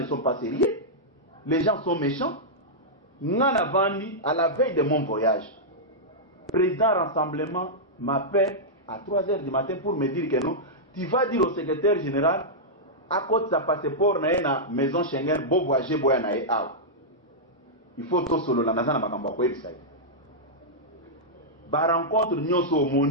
sont pas sérieux. Les gens sont méchants. Ngana vandi à la veille de mon voyage. Président rassemblement m'appelle à 3h du matin pour me dire que non, tu vas dire au secrétaire général à cause de sa passeport na maison Schengen bo voyager boya na e aw. Il faut to solo la nazana makamba ko ebisa. Ba rencontre nyoso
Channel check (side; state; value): both; normal; correlation -0.09